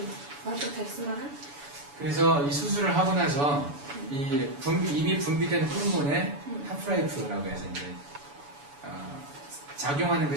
бодлого тавьсан байгаа. 그래서 이 수술을 하고 나서 이미 분비된 호르몬의 하프라이프라고 해서 이제 작용하는 그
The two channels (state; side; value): late; left; 7.0 ms